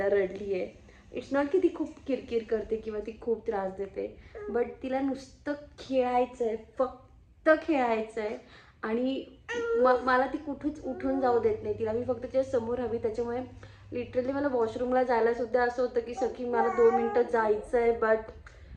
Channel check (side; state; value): both; identical; correlation 1.00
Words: रडली आहे. इट्स नॉट की ती खूप किरकिर करते किंवा ती खूप त्रास देते, बट तिला नुसतं खेळायचं आहे, फक्त खेळायचं आहे. आणि मला ती कुठेच उठून जाऊ देत नाही. तिला मी फक्त तिच्या समोर हवी. त्याच्यामुळे लिटरली मला वॉशरूमला जायला सुद्धा असं होतं की सखी मला 2 मिनटं जायचं आहे, बट